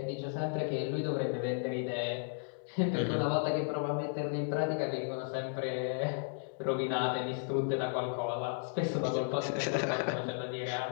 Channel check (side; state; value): right; silent; digital silence